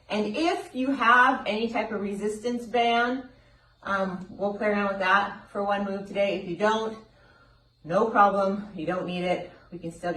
And if you have any type of resistance band, we'll play around with that for one move today. If you don't, no problem. You don't need it. We can still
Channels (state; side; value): identical; both; correlation 1.00